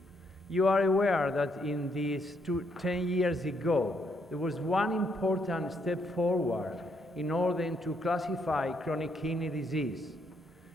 You are aware that in these 10 years ago, there was one important step forward in order to classify chronic kidney disease.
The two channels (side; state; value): both; normal; correlation 0.74